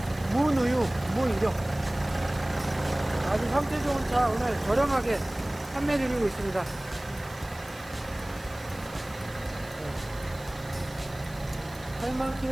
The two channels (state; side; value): noise; right; hiss, 21 dB below the sound